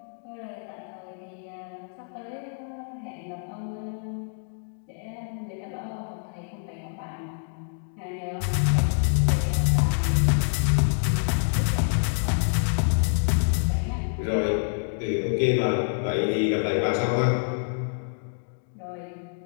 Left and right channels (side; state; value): right; silent; digital silence